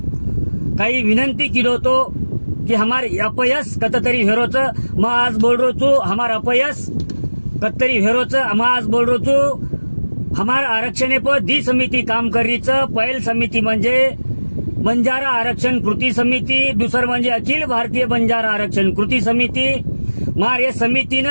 कई विनंती कीधो तो कि हमारे अपयश कतरी हेरोच मैं आज बोल रो छू। हमारा अपयश कतरी हेरोच मैं आज बोल रो छू। हमारा आरक्षण पर दी समिती काम करीच। पहिल समिती म्हणजे बंजारा आरक्षण कृती समिती, दुसर म्हणजे अखिल भारतीय बंजारा आरक्षण कृती समिती। मार या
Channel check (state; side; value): inverted; both; correlation -1.00